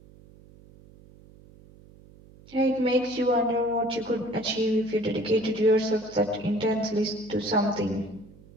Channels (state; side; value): noise; right; hum, 23 dB below the sound